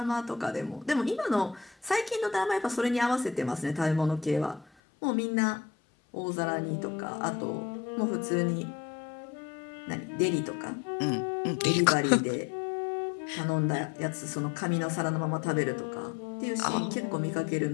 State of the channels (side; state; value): right; drops out; at 4.7 s